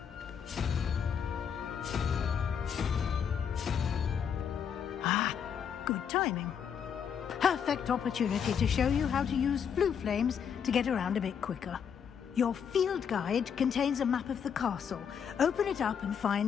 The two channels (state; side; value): quieter; right; 7.6 dB